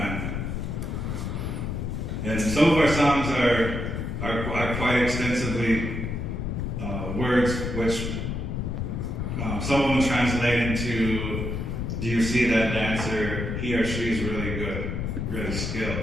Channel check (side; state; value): left; noise; rumble, 3 dB below the sound